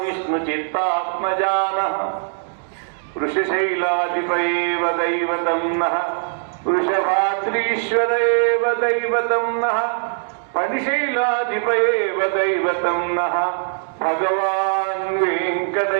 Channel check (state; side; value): silent; left; digital silence